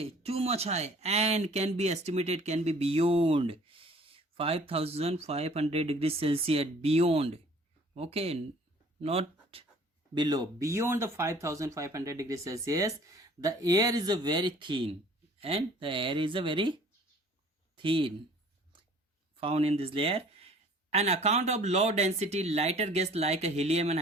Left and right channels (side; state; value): both; normal; correlation 0.52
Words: too much high, and can be estimated, can be beyond 5500 degrees Celsius. Beyond, okay, not below, beyond the 5500 degrees Celsius. The air is a very thin, and the air is a very thin found in this layer. An account of low density lighter gas like helium and